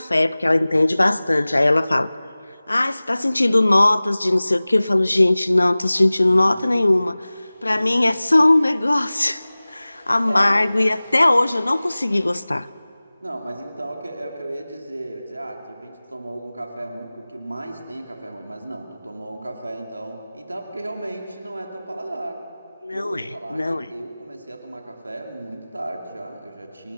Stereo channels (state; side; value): inverted; both; correlation -0.99